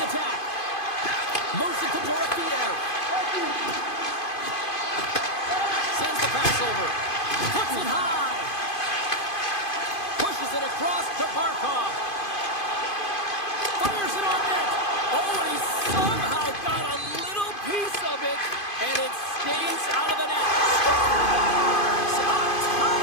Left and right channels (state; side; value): late; right; 2.5 ms